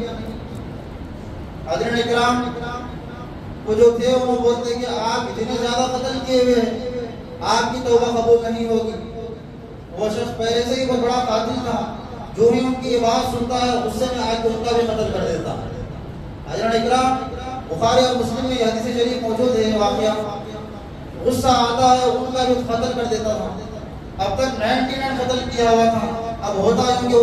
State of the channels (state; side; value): identical; both; correlation 1.00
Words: حضرت اکرام وہ جو تھے انہوں بولتے کہ آپ اتنے زیادہ قتل کیے ہوئے ہیں، آپ کی توبہ قبول نہیں ہوگی۔ وہ شخص پہلے سے ہی بہت بڑا قاتل تھا، جو ہی ان کی یہ بات سنتا ہے غصے میں آج ان کا بھی قتل کر دیتا۔ حضرت اکرام بخاری اور مسلم میں یہ حدیث شریف موجود ہے، واقعہ غصہ آتا ہے ان کا بھی قتل کر دیتا تھا۔ اب تک 99 قتل کیا ہوا تھا، اب ہوتا ہے کہ